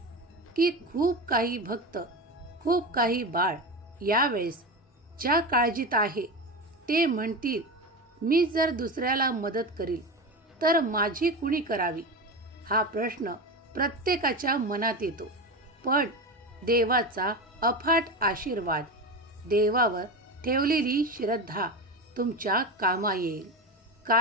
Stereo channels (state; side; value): normal; both; correlation 0.22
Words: की खूप काही भक्त, खूप काही बाळ यावेळेस ज्या काळजीत आहे ते म्हणतील मी जर दुसऱ्याला मदत करील तर माझी कुणी करावी. हा प्रश्न प्रत्येकाच्या मनात येतो. पण देवाचा अफाट आशीर्वाद, देवावर ठेवलेली श्रद्धा तुमच्या कामा येईल.